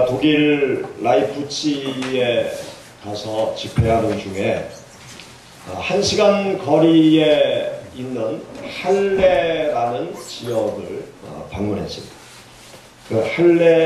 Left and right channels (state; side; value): identical; both; correlation 1.00